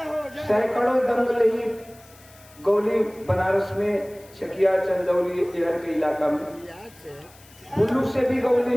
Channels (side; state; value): left; noise; hiss, 25 dB below the sound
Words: सैकड़ों दंगल ही गौली बनारस में चकिया चंदौली इधर के इलाका में कुल्लू से भी गौली